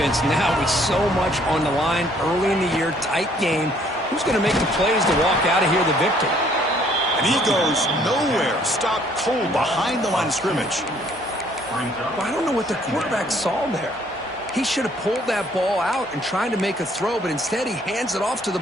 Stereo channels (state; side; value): normal; both; correlation 0.63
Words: Now with so much on the line early in the year, tight game, who's going to make the plays to walk out of here the victor? And he goes nowhere. Stopped cold behind the line of scrimmage. Well, I don't know what the quarterback saw there. He should have pulled that ball out and tried to make a throw, but instead he hands it off to the